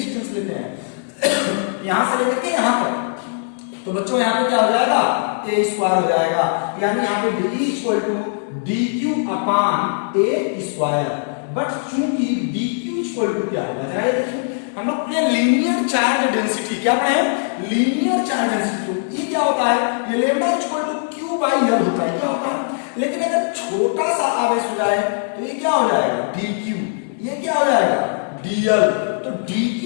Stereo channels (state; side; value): silent; right; digital silence